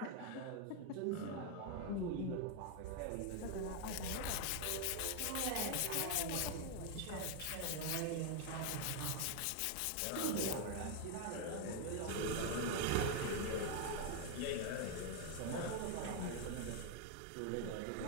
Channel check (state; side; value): different; both; correlation 0.01